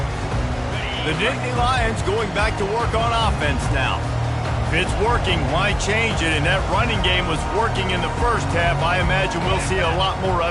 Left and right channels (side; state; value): both; identical; correlation 1.00